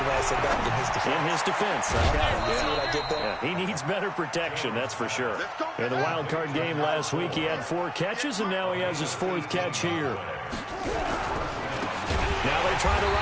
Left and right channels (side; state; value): both; identical; correlation 1.00